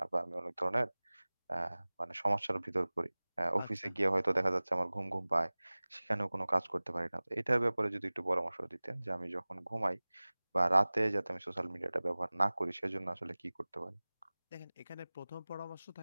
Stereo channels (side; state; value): both; inverted; correlation -1.00